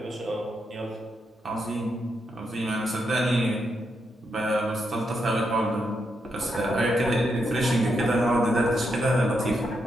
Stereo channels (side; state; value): both; normal; correlation 0.82